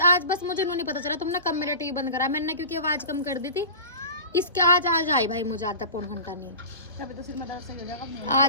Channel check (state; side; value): inverted; both; correlation -0.33